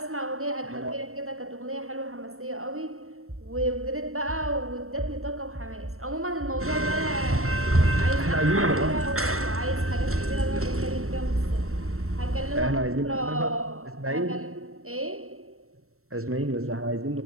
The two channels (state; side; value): late; left; 0.63 ms